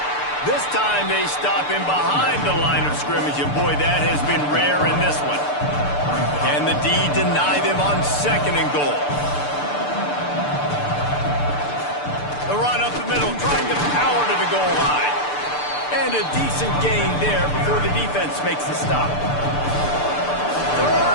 This time they stop him behind the line of scrimmage, and boy, that has been rare in this one. Can the D deny them on 2nd and goal? The run up the middle, trying to power to the goal line. And a decent gain there before the defense makes the stop.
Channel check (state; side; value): late; right; 6.8 ms